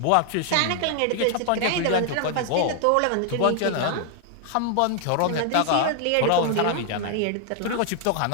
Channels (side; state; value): both; different; correlation 0.00